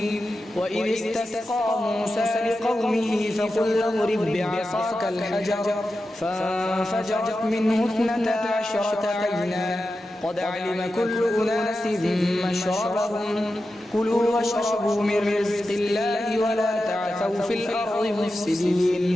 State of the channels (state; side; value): normal; both; correlation 0.91